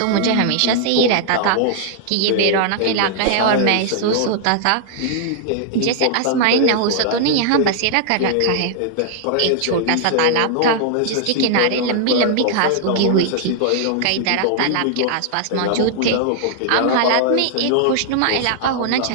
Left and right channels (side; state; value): both; different; correlation -0.01